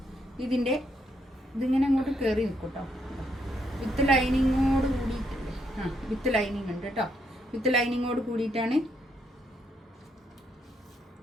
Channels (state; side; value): normal; both; correlation 0.76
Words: ഇതിങ്ങനെ അങ്ങോട്ട് കയറി നിൽക്കും കേട്ടോ. വിത്ത് ലൈനിങ്ങോട് കൂടിയിട്ടുണ്ട്. വിത്ത് ലൈനിങ് ഉണ്ട് കേട്ടോ. വിത്ത് ലൈനിങ്ങോട് കൂടിയിട്ടാണ്.